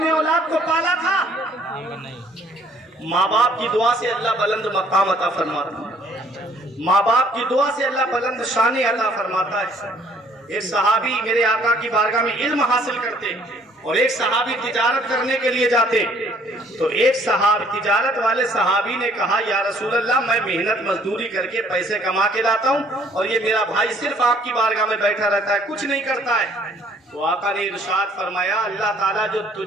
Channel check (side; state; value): both; normal; correlation 0.61